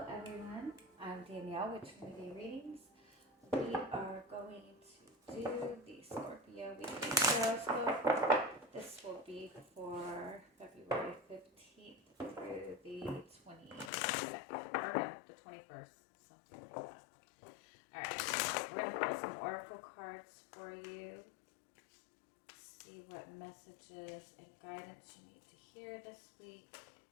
everyone, I'm Danielle with Trinity Readings. We are going to do the Scorpio Weekly Tarotscope. This will be for February 15th through the 22nd, or no, the 21st, something like that. Alright, we're going to pull some oracle cards for you. See what messages and guidance you need to hear this week.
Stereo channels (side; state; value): right; drops out; at 13.9 s